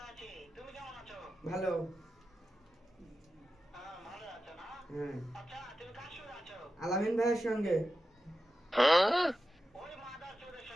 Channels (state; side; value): normal; both; correlation 0.92